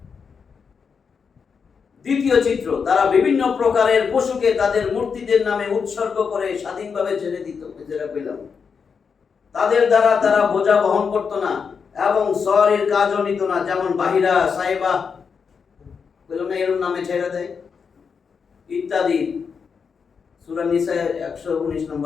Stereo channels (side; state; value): right; quieter; 6.0 dB